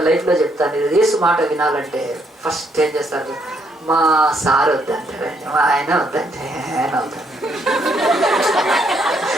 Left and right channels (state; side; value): normal; both; correlation 0.72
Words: లైఫ్లో చెప్తాను, యేసు మాట వినాలంటే ఫస్ట్ ఏం చేస్తారు? మా సార్ వద్దంటారండి, మా ఆయన వద్దంటే ఆయన వద్దండి.